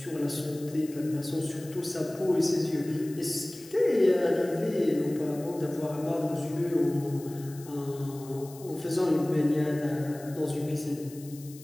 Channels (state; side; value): noise; left; hiss, 19 dB below the sound